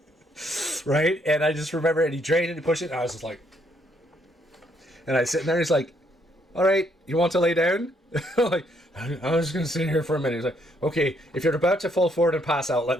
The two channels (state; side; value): normal; both; correlation 0.71